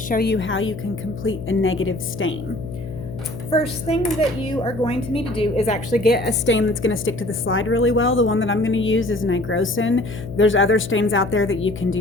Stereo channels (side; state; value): left; noise; hum, 10 dB below the sound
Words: show you how you can complete a negative stain. First thing that you are going to need to do is actually get a stain that's going to stick to the slide really well. The one that I'm going to use is nigrosin. There's other stains out there that you can